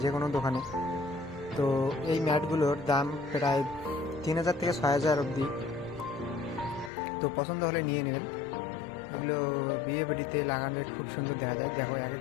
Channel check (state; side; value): drops out; right; at 6.9 s